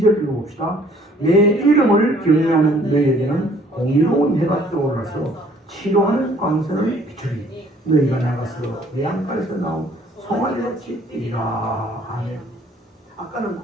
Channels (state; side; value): normal; both; correlation 0.59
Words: 읽어봅시다. 내 이름을 경외하는 너희에게는 공의로운 해가 떠올라서 치료하는 광선을 비추리. 너희가 나가서 외양간에서 나온 송아지같이 뛰라. 아멘. 아까는